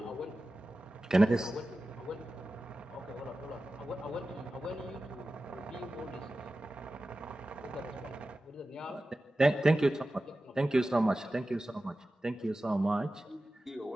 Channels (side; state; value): both; normal; correlation 0.94